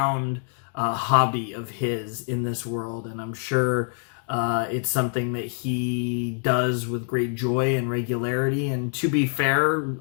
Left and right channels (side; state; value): right; silent; 59 dB below the other